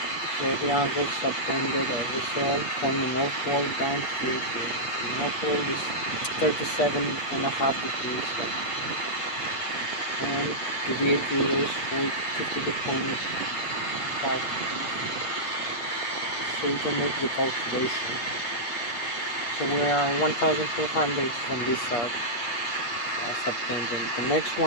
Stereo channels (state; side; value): late; right; 8.1 ms